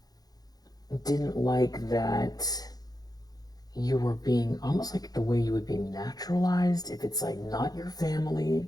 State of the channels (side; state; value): right; late; 0.19 ms